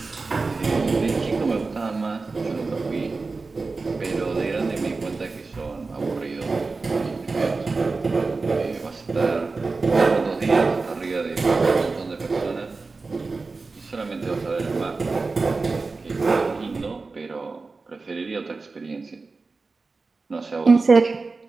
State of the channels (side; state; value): left; quieter; 4.0 dB